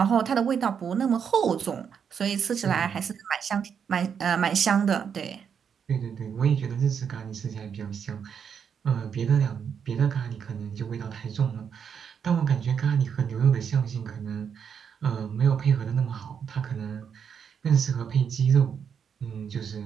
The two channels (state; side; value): quieter; left; 7.3 dB